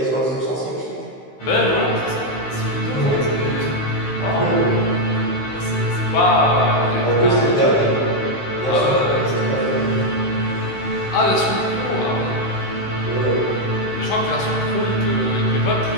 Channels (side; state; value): right; late; 15 ms